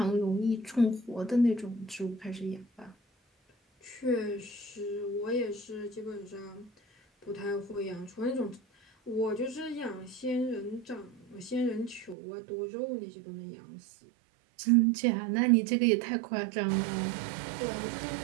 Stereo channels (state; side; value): drops out; left; at 12.2 s